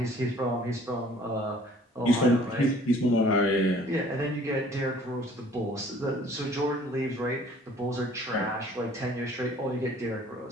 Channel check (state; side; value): normal; both; correlation 0.54